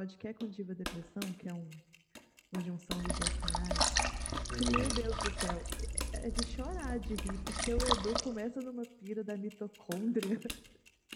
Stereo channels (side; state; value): both; identical; correlation 1.00